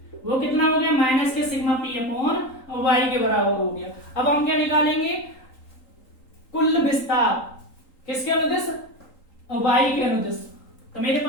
वो कितना हो गया, माइनस के सिग्मा P अपॉन वाई के बराबर हो गया। अब हम क्या निकालेंगे, कुल विस्तार किसके अनुदिश, वाई के अनुदिश। तो मेरे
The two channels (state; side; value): late; right; 3.8 ms